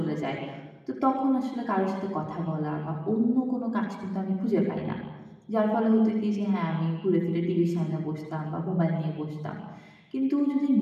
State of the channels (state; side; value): identical; both; correlation 1.00